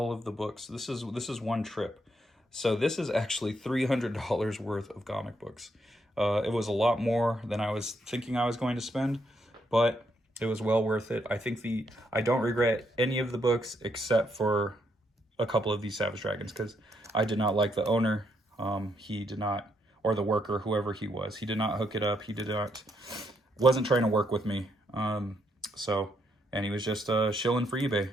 of the books. This is one trip. So this is actually $300 worth of comic books. It was a lot more than I was thinking I was going to spend, but it was well worth it. I don't regret any of the books except for a couple of these Savage Dragons, because I did not like the owner. He did not, or the worker, whoever he was, he did not hook it up. He wasn't trying to work with me. And he was just shilling for eBay.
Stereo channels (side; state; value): both; normal; correlation 0.76